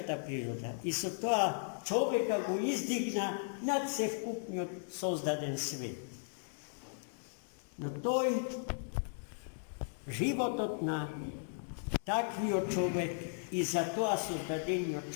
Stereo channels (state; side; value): silent; right; digital silence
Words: природа. И со тоа човека го издигна над севкупниот создаден свет. Но тој, животот на таквиот човек и за тоа создадениот